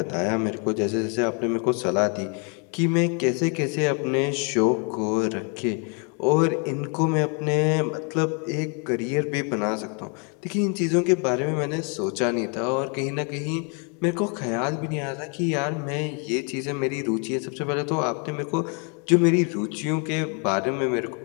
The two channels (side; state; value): right; quieter; 37.0 dB